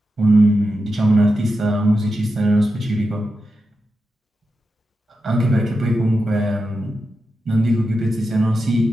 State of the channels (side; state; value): both; normal; correlation 0.89